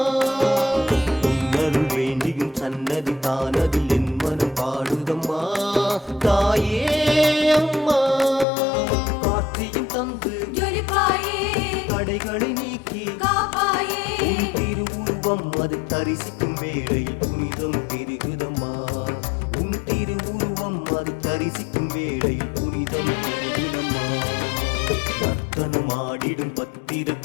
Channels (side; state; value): right; drops out; at 8.5 s